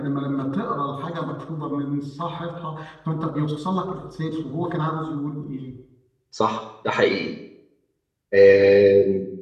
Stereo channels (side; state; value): both; identical; correlation 1.00